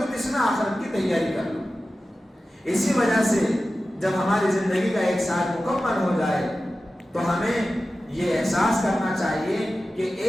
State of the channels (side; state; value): both; normal; correlation 0.94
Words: اس میں آخرت کی تیاری کر لو۔ اسی وجہ سے جب ہماری زندگی کا ایک سال مکمل ہو جائے تو ہمیں یہ احساس کرنا چاہیے کہ